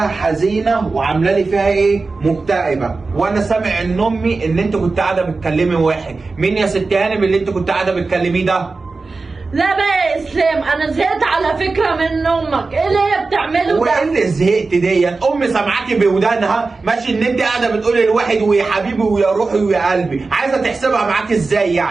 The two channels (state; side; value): quieter; left; 3.9 dB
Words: حزينه وعامله لي فيها ايه؟ مكتئبه، وانا سامع ان امي ان انت كنت قاعده بتكلمي واحد. مين يا ست هانم اللي انت كنت قاعده بتكلميه ده؟ لا بقى يا اسلام انا زهقت على فكره من امك، ايه اللي هي بتعمله ده؟ وايه اللي زهقت دي؟ امي سامعاكي بودانها ماشي ان انت قاعده بتقولي لواحد ويا حبيبي ويا روحي ويا قلبي، عايزه تحسبها معاكي ازاي